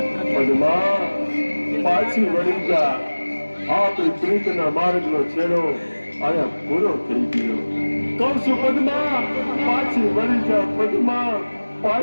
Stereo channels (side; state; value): both; inverted; correlation -1.00